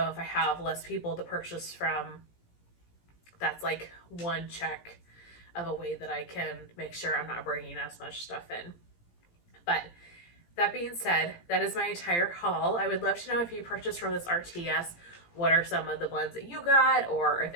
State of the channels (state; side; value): late; right; 17 ms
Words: if I have less people to purchase from, that's like one check of a way that I can make sure I'm not bringing as much stuff in. But that being said, that is my entire haul. I would love to know if you purchased from this RTS, what are some of the blends that you got, or if